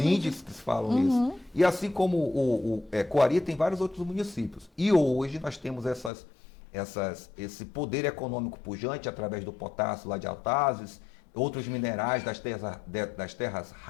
que falam isso. E assim como o Coari, tem vários outros municípios. E hoje nós temos esse poder econômico pujante através do potássio lá de Altazes, outros minerais das terras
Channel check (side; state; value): right; drops out; at 6.1 s